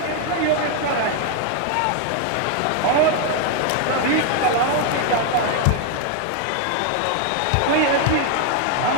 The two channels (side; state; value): both; different; correlation 0.00